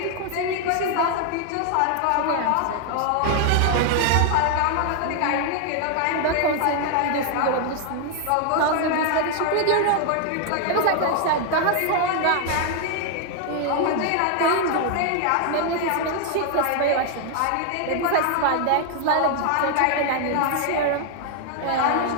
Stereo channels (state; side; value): different; both; correlation 0.00